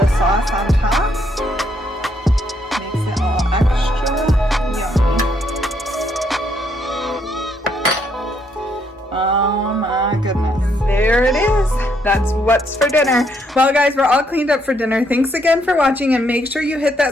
sauce on top. Makes it all extra yummy. Oh my goodness. And there it is. That's what's for dinner. Well guys, we're all cleaned up for dinner. Thanks again for watching, and make sure you hit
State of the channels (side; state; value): both; normal; correlation 0.73